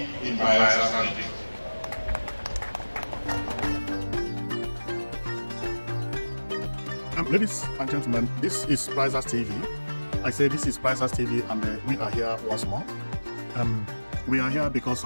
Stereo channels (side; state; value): both; inverted; correlation -1.00